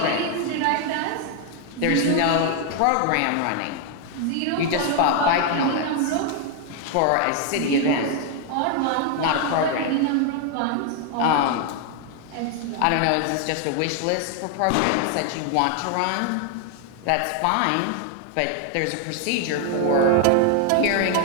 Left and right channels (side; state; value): both; different; correlation 0.00